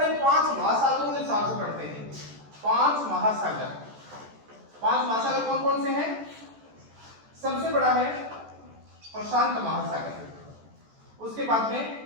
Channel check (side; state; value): left; late; 14 ms